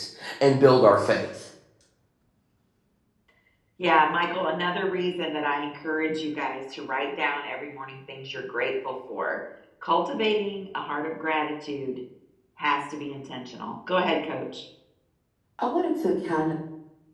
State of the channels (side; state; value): both; identical; correlation 1.00